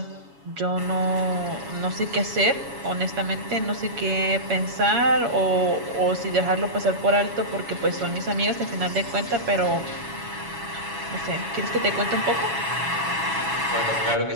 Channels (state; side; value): late; left; 7.2 ms